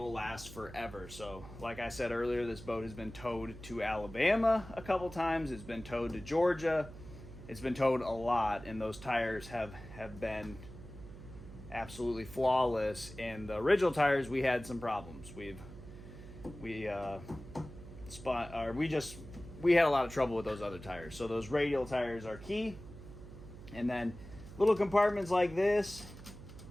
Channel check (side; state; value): right; noise; hum, 15 dB below the sound